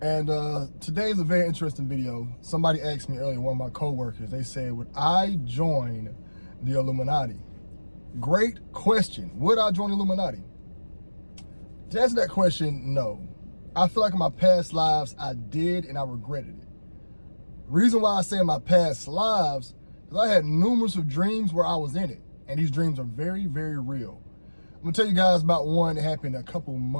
today is a very interesting video. Somebody asked me earlier, one of my co-workers, they said, would I join the Illuminati? Great question. Would I join the Illuminati? To answer that question, no. I feel like in my past lives, I did and I regretted it. Reason why I say in my past lives, because I had numerous of dreams where I was in it. And these dreams are very, very real. I'm gonna tell you guys about one that happened a couple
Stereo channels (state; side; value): inverted; both; correlation -1.00